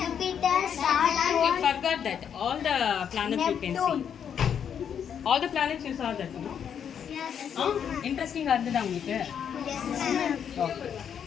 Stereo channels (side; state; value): right; quieter; 8.2 dB